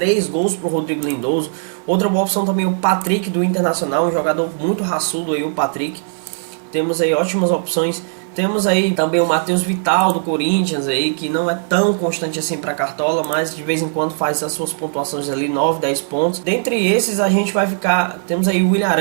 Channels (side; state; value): left; silent; 67 dB below the other